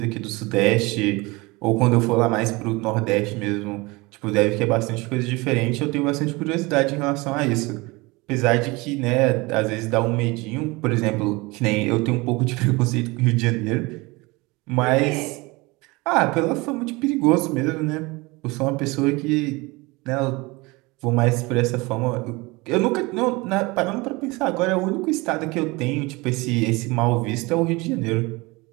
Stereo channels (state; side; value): quieter; left; 24.1 dB